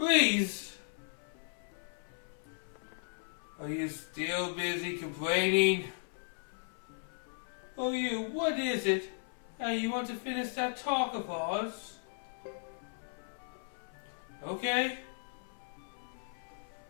Are you still busy complaining? Oh, what is it? You want to finish that talk of ours? Okay.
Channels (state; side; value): silent; right; 54 dB below the other